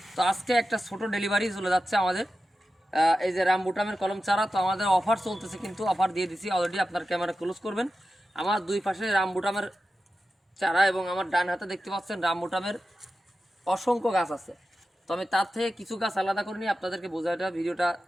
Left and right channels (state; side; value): normal; both; correlation 0.92